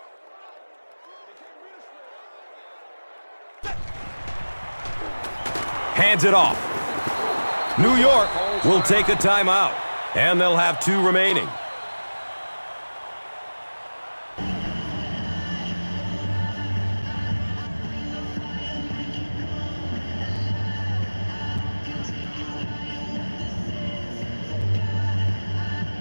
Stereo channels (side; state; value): both; inverted; correlation -1.00